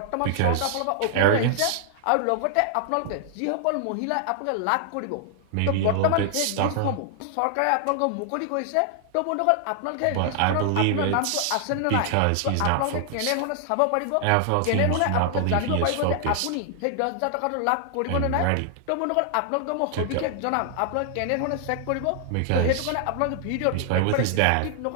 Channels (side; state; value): both; different; correlation 0.00